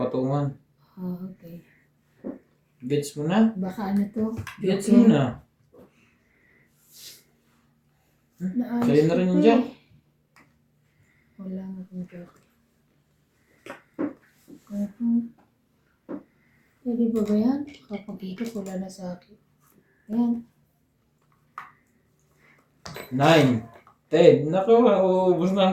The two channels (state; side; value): identical; both; correlation 1.00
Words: Ah, okay. Gets mo na? Baka ano to? Gets mo na? Naayos Sa'yo na rin ko yung eh. jack. Wala nga akong jockey. Pwede ba ba yan? Kapag ikot, wala na sa akin. Ayan. 9, 10. Naku, uubos na